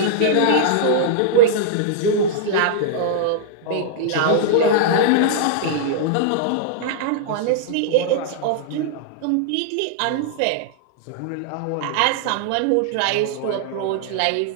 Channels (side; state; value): both; different; correlation -0.01